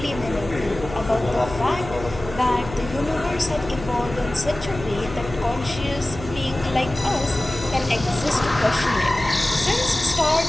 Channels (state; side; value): noise; left; hum, 12 dB below the sound